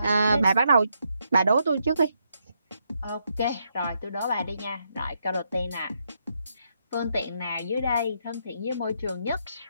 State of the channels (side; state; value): both; inverted; correlation -0.79